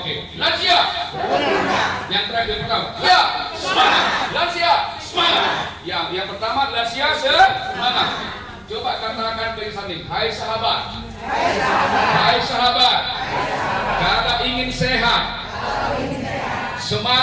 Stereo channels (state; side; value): identical; both; correlation 1.00